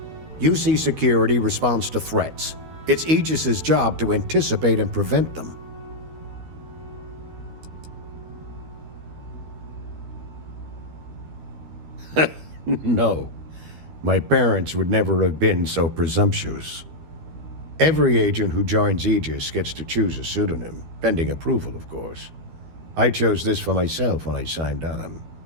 UC Security responds to threats. It's Aegis's job to anticipate and prevent them. No. My parents would never have been so presumptuous. Every agent who joins Aegis gets to choose a pseudonym, pending approval, of course. I chose this for myself when I signed on.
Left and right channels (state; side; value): late; left; 12 ms